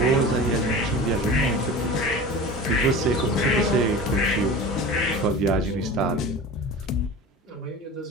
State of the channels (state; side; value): normal; both; correlation 0.34